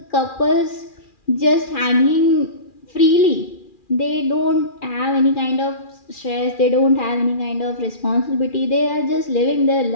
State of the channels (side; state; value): right; late; 2.4 ms